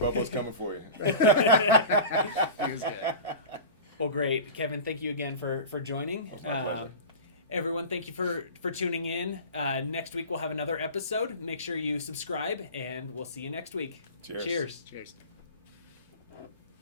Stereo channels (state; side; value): inverted; both; correlation -0.34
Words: coming for you. He was good. Well, great, Kevin. Thank you again for joining. It's my pleasure. Everyone, thank you for tuning in. Next week we'll have another episode. Make sure you subscribe, and we'll see you next week. Cheers. Cheers.